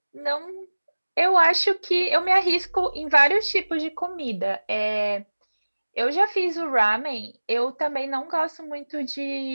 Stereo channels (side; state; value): both; inverted; correlation -1.00